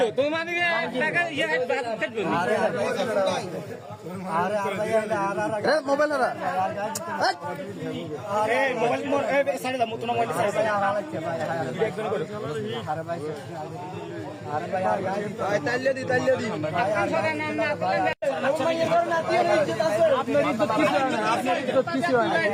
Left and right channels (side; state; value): both; identical; correlation 1.00